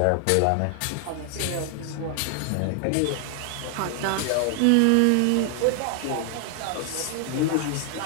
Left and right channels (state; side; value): different; both; correlation 0.00